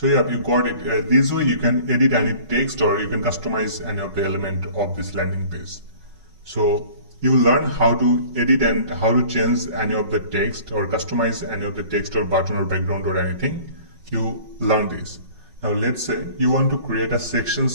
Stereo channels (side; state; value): left; late; 5.4 ms